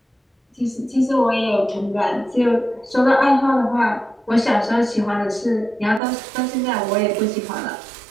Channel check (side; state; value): left; drops out; at 6.0 s